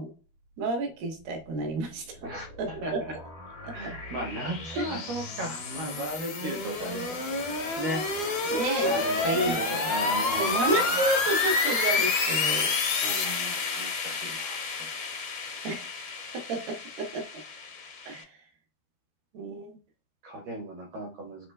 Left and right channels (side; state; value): left; late; 12 ms